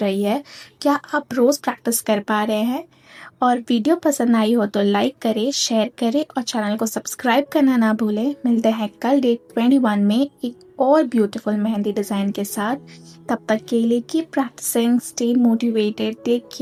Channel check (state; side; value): identical; both; correlation 1.00